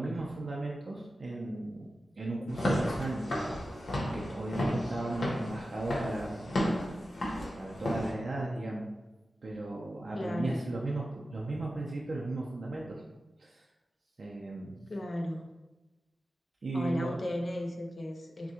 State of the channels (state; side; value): normal; both; correlation 0.93